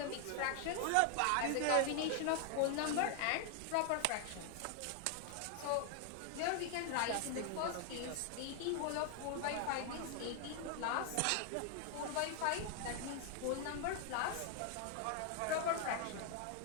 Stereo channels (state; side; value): different; both; correlation 0.00